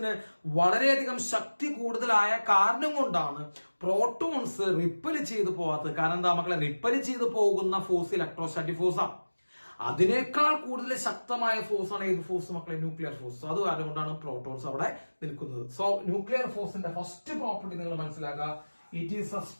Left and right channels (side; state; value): both; inverted; correlation -1.00